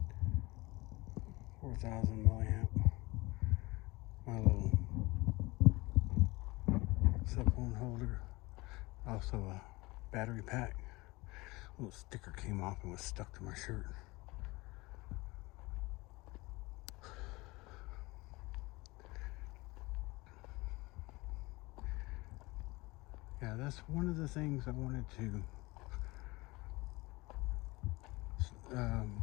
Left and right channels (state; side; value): quieter; right; 22.5 dB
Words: 4,000 milliamp, my little cell phone holder, also a battery pack. A little sticker came off and was stuck to my shirt. Yeah, that's one of the things I wanted to